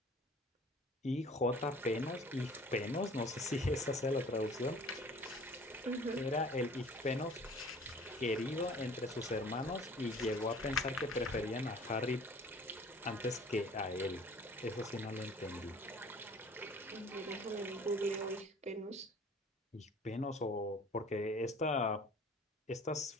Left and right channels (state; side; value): normal; both; correlation 0.49